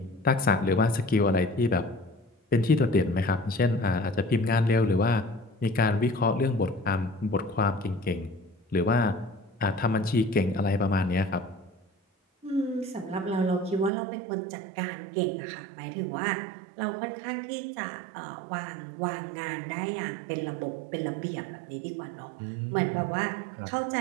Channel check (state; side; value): drops out; left; at 13.9 s